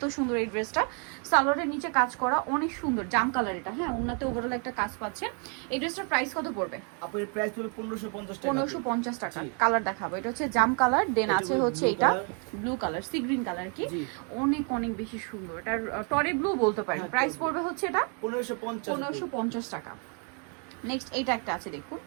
সুন্দর এই ড্রেসটা। সালোয়ারের নিচে কাজ করা, অনেক সুন্দর জাম কালার এটা। হ্যাঁ, ওনাতে ওভারঅল একটা কাজ পাচ্ছেন। এই ড্রেসটার প্রাইস কত পড়বে? আপনার প্রাইস হলো 1550 টাকা। 1550 টাকা। কালার দেখাবো। এটা হচ্ছে জাম কালার, দেন আছে হচ্ছে এটা blue colour, sea green colour. কি অনেক অনেক বেশি সুন্দর। এটা টরে ব্লু বলতে পারেন। প্রাইস পড়বে হচ্ছে এটা 1550 টাকা। নেক্সট এইটা একটা আছে, দেখুন।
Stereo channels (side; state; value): left; quieter; 38.5 dB